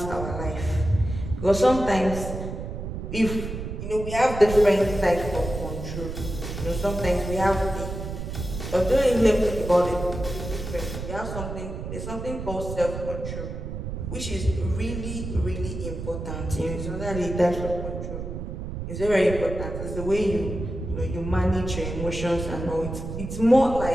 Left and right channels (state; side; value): noise; right; rumble, 6 dB below the sound